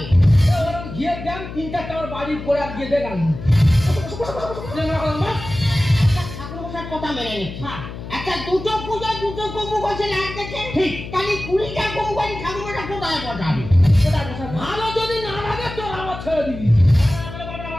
ওরকম ঘিয়ের দাম 3-4টা আমার বাড়ি পরে আর গিয়ে দেখাল চেংড়া বলা ঠাকুর মশাই কথা মেনে নিচ্ছে হ্যাঁ একটা দুটো পূজা দুটো কবু করছে লাগতেছে ঠিক। তাহলে 20টা কবু করে ঠাকুর মশাই কোথায় বসাবে কোথায় বসাবো ভালো যদি না লাগে তোর আমার ছেড়ে দিবি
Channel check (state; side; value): noise; left; hum, 10 dB below the sound